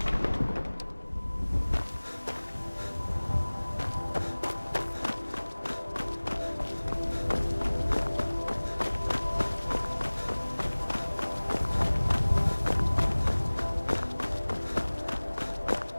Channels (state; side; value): inverted; both; correlation -1.00